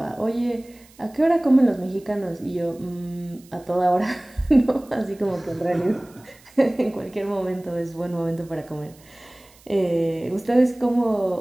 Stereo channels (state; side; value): noise; right; hiss, 27 dB below the sound